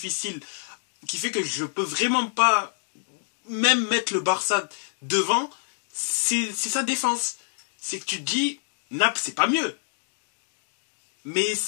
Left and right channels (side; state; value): right; silent; 57 dB below the other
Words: qui fait que je peux vraiment pas même mettre le Barça devant. C'est sa défense. C'est que tu te dis, Naples, c'est pas mieux. Mais